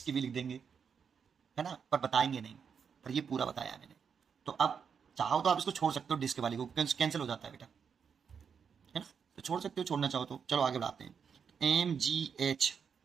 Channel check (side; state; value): left; quieter; 6.7 dB